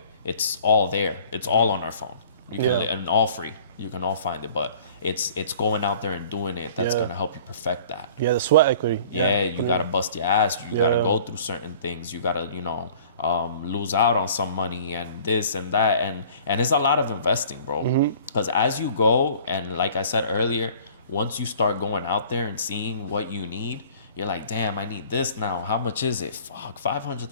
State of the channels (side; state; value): both; inverted; correlation -0.49